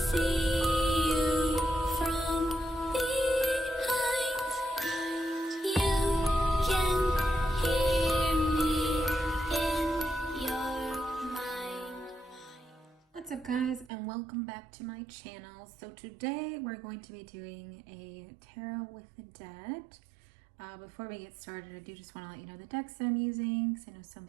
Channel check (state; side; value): drops out; left; at 13.9 s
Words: you from behind. You can hear me in your mind. What's up, guys, and welcome back to my channel. So today we're going to be doing a tarot with the dead. Before we get started, I do just want to let you know the decks that I'm using, because I know some